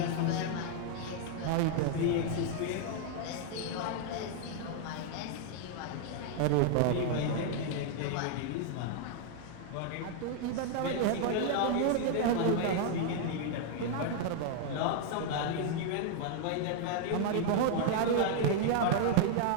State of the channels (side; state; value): both; different; correlation 0.00